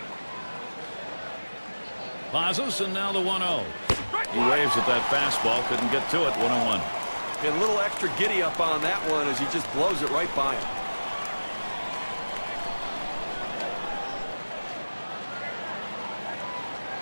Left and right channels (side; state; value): both; inverted; correlation -1.00